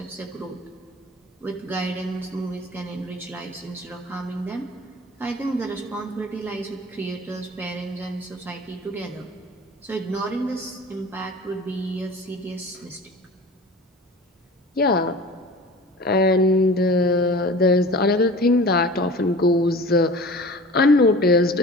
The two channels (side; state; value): both; normal; correlation 0.40